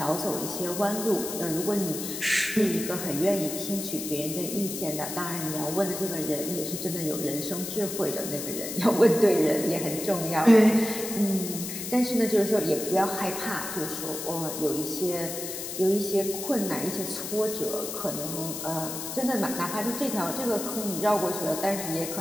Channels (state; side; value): noise; left; hiss, 6 dB below the sound